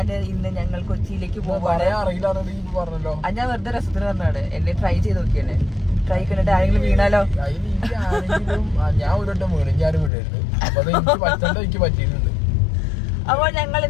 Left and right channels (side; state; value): right; drops out; at 10.1 s